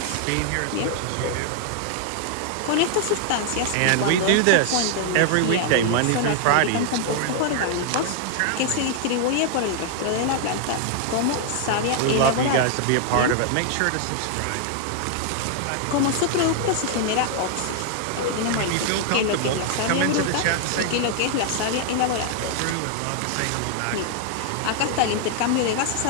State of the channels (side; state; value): both; different; correlation 0.00